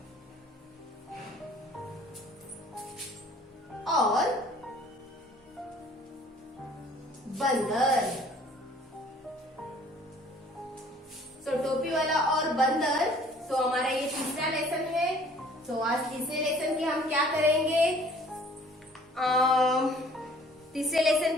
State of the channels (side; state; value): both; normal; correlation 0.54